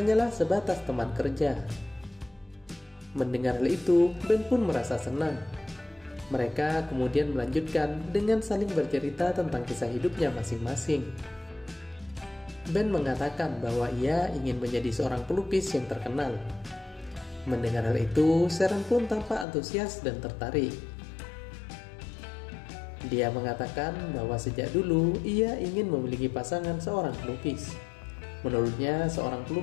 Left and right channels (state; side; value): drops out; right; at 19.5 s